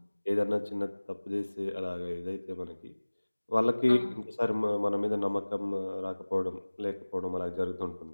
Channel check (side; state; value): both; inverted; correlation -1.00